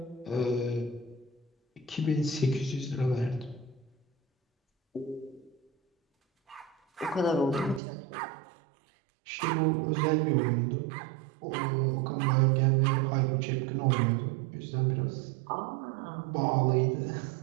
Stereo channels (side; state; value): left; drops out; at 7.8 s